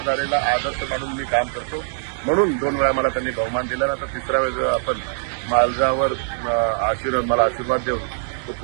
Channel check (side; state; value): left; silent; digital silence